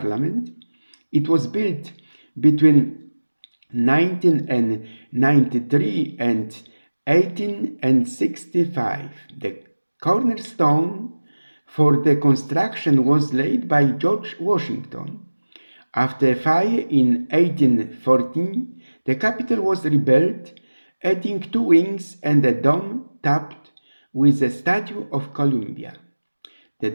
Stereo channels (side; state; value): both; inverted; correlation -1.00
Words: It was built between 1993 and 1865. The cornerstone for the construction was laid by George Washington. After a fire in 1814, the Capitol was rebuilt, adding 2 wings and a dome topped with a statue of Columbia. The